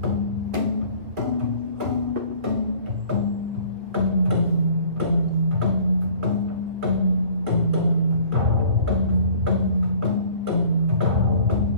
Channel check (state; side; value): late; left; 2.6 ms